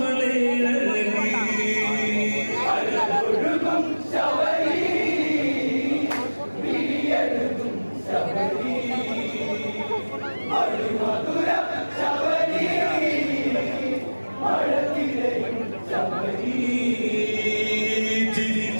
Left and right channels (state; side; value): inverted; both; correlation -1.00